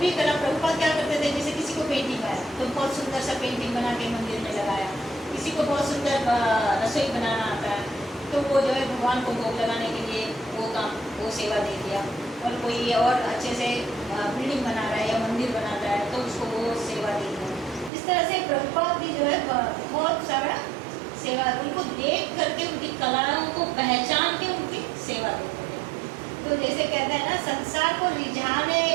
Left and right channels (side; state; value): left; drops out; at 17.9 s